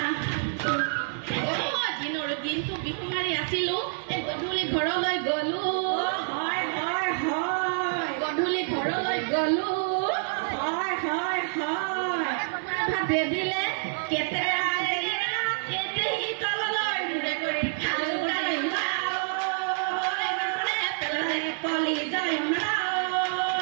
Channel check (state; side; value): silent; left; digital silence